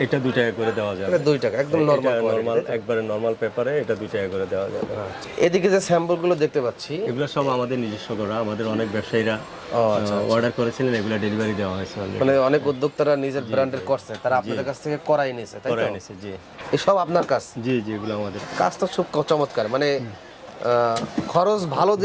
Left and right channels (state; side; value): identical; both; correlation 1.00